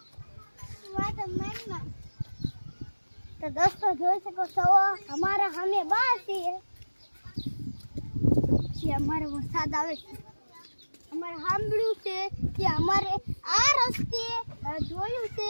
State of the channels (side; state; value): both; inverted; correlation -1.00